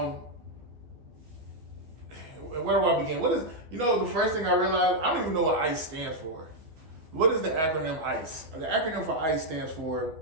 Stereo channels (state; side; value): late; left; 12 ms